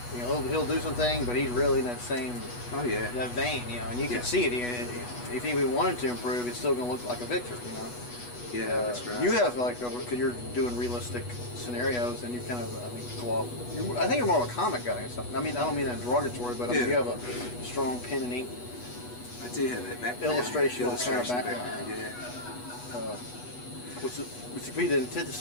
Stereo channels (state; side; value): late; right; 8.2 ms